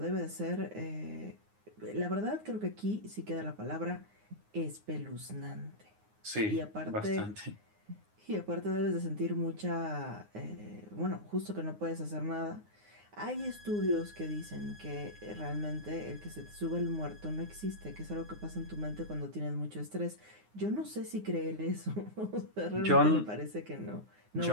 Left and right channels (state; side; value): late; left; 9.6 ms